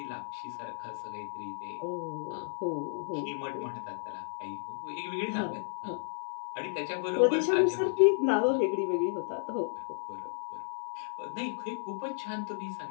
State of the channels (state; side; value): silent; right; 56 dB below the other